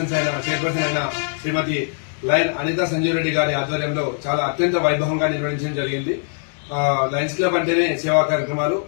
అయిన శ్రీమతి లయన్ అనితా సంజీవ్ రెడ్డి గారి ఆధ్వర్యంలో చాలా అత్యంత వైభవంగా నిర్వహించడం జరిగింది. లయన్స్ క్లబ్ అంటేనే సేవా కార్యక్రమాలు,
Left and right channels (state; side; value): silent; right; 57 dB below the other